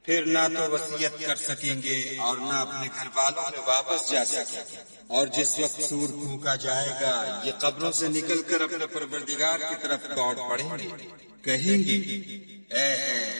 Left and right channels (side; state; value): both; inverted; correlation -1.00